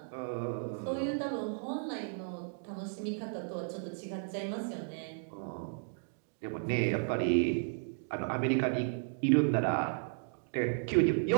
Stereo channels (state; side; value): silent; left; digital silence